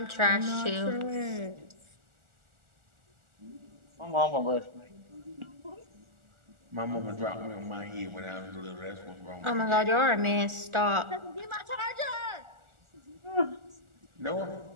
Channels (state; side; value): late; left; 1.4 ms